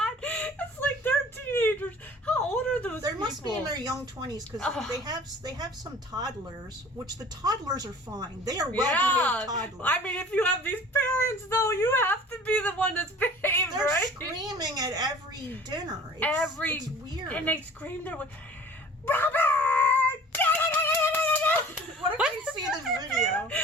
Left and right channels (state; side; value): normal; both; correlation 0.46